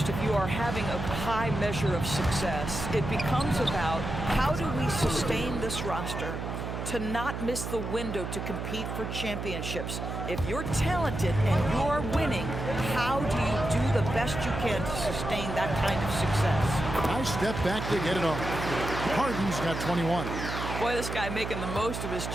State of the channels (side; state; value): right; noise; hum, 5 dB below the sound